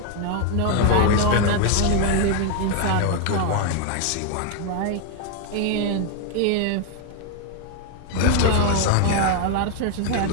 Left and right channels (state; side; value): different; both; correlation 0.00